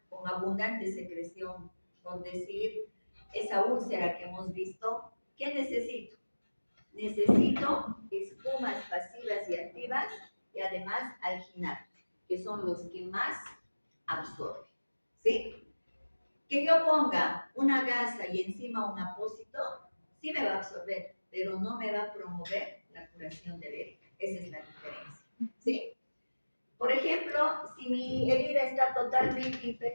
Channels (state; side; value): inverted; both; correlation -1.00